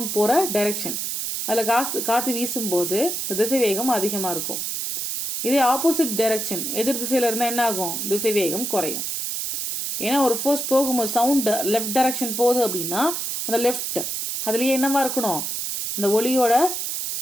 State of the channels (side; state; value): right; noise; hiss, 3 dB below the sound